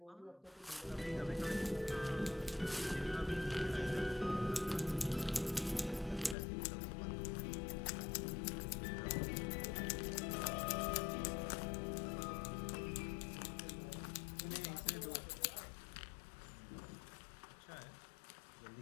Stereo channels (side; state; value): right; drops out; at 6.4 s